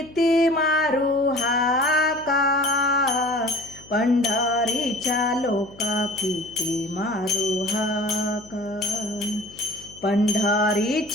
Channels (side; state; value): left; noise; hum, 23 dB below the sound